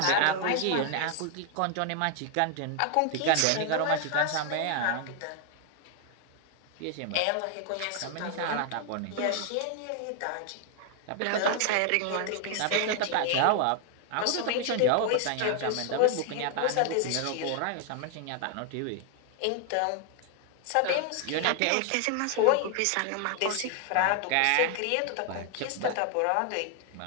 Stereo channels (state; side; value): different; both; correlation 0.00